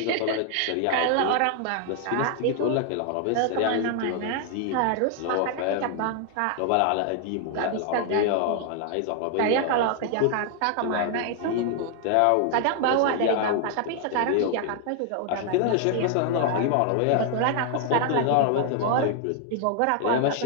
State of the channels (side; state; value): both; different; correlation 0.00